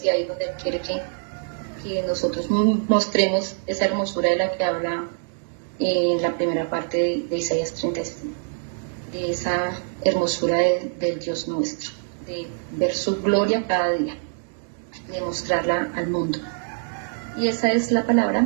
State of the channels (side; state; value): left; silent; 62 dB below the other